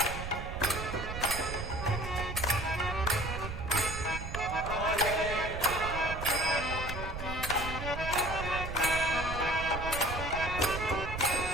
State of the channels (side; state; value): right; noise; rumble, 6 dB below the sound